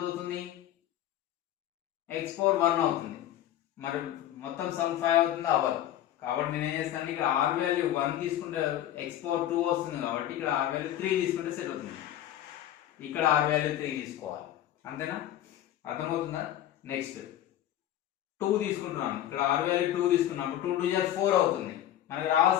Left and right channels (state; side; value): quieter; right; 12.2 dB